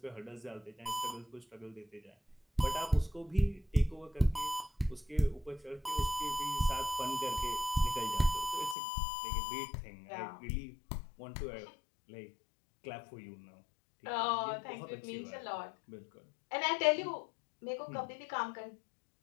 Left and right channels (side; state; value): right; drops out; at 8.8 s